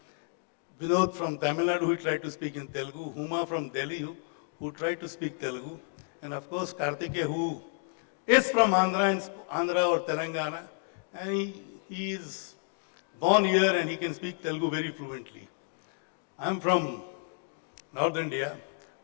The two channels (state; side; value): silent; right; 55 dB below the other